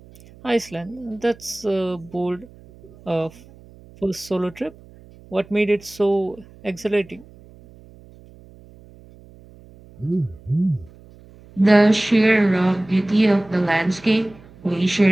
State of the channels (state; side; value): noise; right; hum, 23 dB below the sound